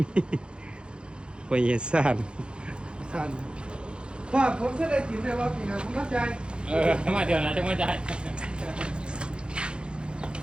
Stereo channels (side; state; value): left; late; 0.053 ms